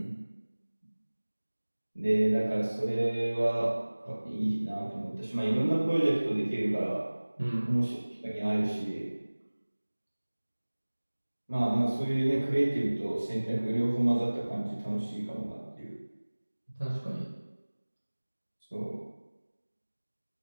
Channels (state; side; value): inverted; both; correlation -1.00